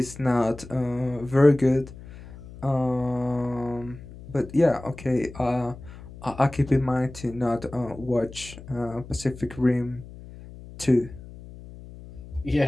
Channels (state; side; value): noise; left; hum, 16 dB below the sound